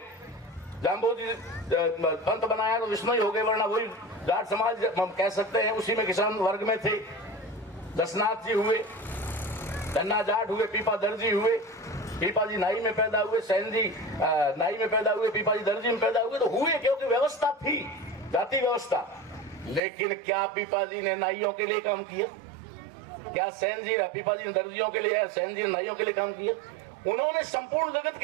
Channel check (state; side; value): drops out; left; at 19.8 s